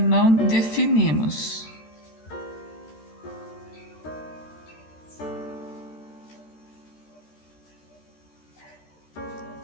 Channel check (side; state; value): right; late; 13 ms